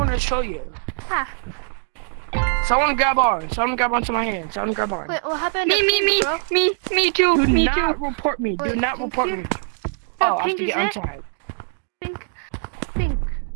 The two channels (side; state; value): left; silent; digital silence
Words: to show you. Ah. Someone grab onto my hand. Someone grab on. Wait, what happened? Me too. Do not report me. Do Wait, not report me. Oh, Oh, I have Pink to is get it? untagged.